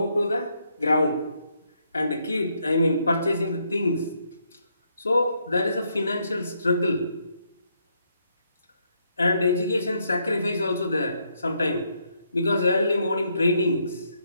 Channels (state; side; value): inverted; both; correlation -0.75